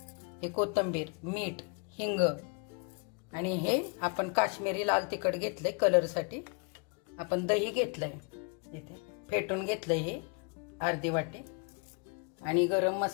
हे कोथिंबीर, मीठ, हिंग आणि हे आपण काश्मीरी लाल तिखट घेतले कलर साठी, आपण दही घेतलंय इथे फेटून घेतलंय हे अर्धी वाटी, आणि गरम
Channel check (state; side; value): quieter; right; 34.4 dB